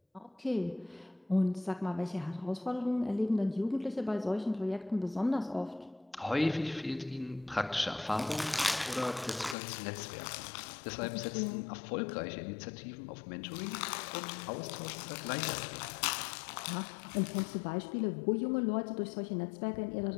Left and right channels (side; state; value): right; drops out; at 9.6 s